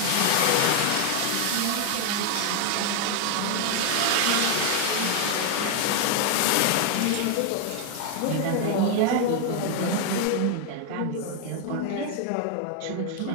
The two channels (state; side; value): different; both; correlation 0.00